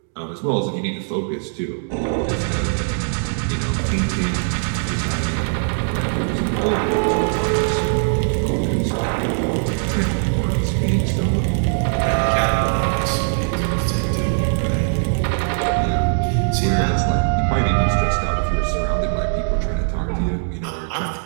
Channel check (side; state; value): left; silent; digital silence